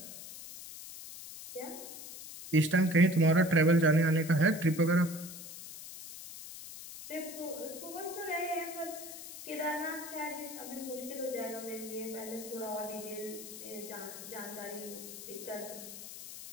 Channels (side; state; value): left; noise; hiss, 12 dB below the sound